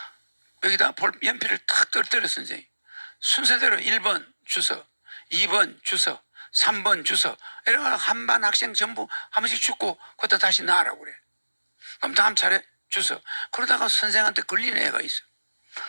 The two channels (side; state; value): both; inverted; correlation -1.00